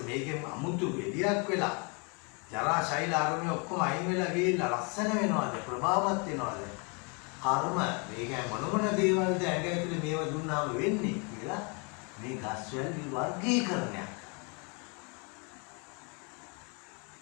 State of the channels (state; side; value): quieter; right; 33.9 dB